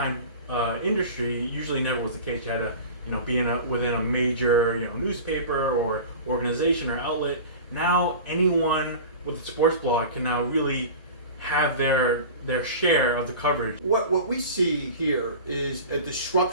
industry usually never was the case. You had to be within a major newspaper or organization or outlet. Now anyone with a sports blog can now really have their share of the coverage. What we see here is a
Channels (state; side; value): inverted; both; correlation -0.35